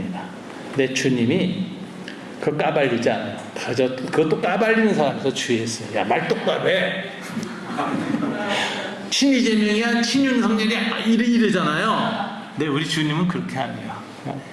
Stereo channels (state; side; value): identical; both; correlation 1.00